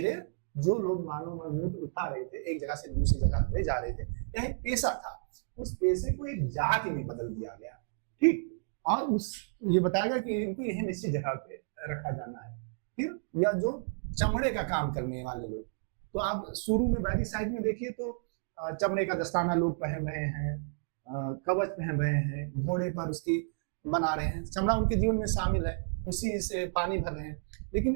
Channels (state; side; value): silent; left; digital silence